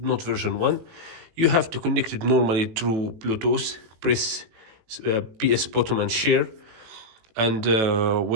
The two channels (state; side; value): late; left; 18 ms